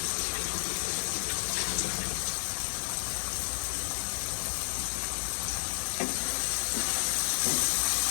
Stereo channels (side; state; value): right; silent; digital silence